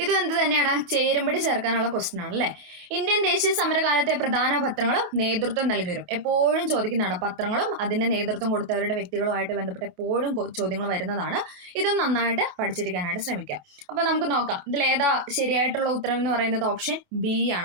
ഇതും എന്ത് തന്നെയാണ്? ചേരുംപടി ചേർക്കാനുള്ള ക്വസ്റ്റ്യൻ ആണ് അല്ലെ. ഇന്ത്യൻ ദേശീയ സമരകാലത്തെ പ്രധാന പത്രങ്ങളും നേതൃത്വം നൽകിവരും. എപ്പോഴും ചോദിക്കുന്നതാണ്. പത്രങ്ങളും അതിന്റെ നേതൃത്വം കൊടുത്തവരുടെ വ്യക്തികളുമായിട്ട് ബന്ധപ്പെട്ട് എപ്പോഴും ചോദ്യങ്ങൾ വരുന്നതാണ്. ഇതും നന്നായിട്ട് പഠിച്ചിരിക്കാനായിട്ട് ശ്രമിക്കാം. അപ്പൊ നമുക്ക് നോക്കാം ഇതിൽ ഏതാ ശരിയായിട്ടുള്ള ഉത്തരം എന്ന് പറയുന്നത്? ഓപ്ഷൻ ബി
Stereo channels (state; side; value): late; left; 28 ms